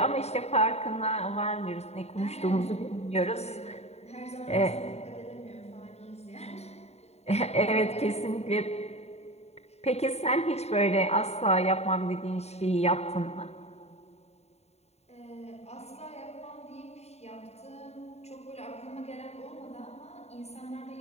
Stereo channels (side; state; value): right; late; 0.31 ms